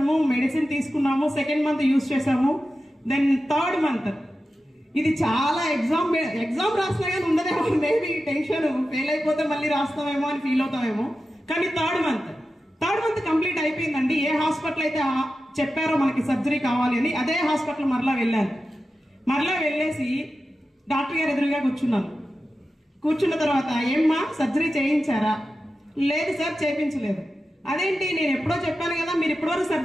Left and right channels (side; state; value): both; normal; correlation 0.92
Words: మెడిసిన్ తీసుకున్నాము, 2nd month యూజ్ చేసాము. దెన్ 3rd month ఇది చాలా ఎగ్జామ్ రాసినా కానీ ఉండదేమో, మేబీ టెన్షన్, ఫెయిల్ అయిపోతే మళ్ళీ రాస్తామేమో అని ఫీల్ అవుతామేమో. కానీ 3rd month కంప్లీట్ అయిపోయిందండి. ఏ హాస్పిటల్ అయితే చెప్పారో మనకి సర్జరీ కావాలి అని అదే హాస్పిటల్ మరలా వెళ్ళాను. మరలా వెళ్ళేసి డాక్టర్ గారు ఎదురుగా కూర్చున్న తర్వాత ఏమ్మా సర్జరీ చేయించారా? లేదు సార్, చేయించలేదు. అదేంటి, నేను ఎప్పుడో చెప్పాను కదా, మీరు ఇప్పటివరకు